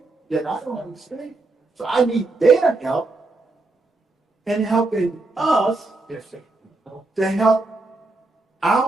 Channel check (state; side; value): quieter; left; 3.2 dB